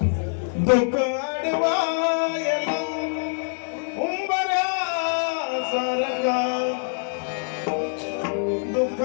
दुःख अडवायला उंबऱ्या सारखा, दुःख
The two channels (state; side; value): silent; right; digital silence